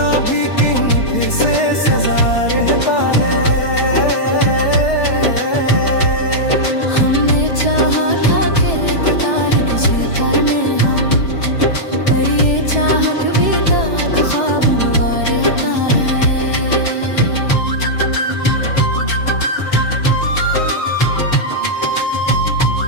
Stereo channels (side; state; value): right; late; 4.7 ms